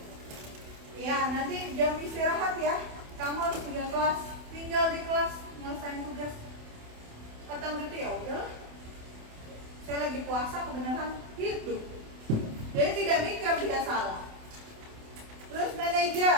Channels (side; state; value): left; late; 28 ms